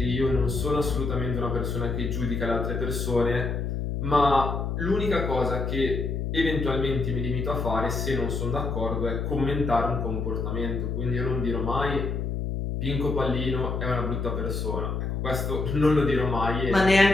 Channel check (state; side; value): noise; left; hum, 2 dB below the sound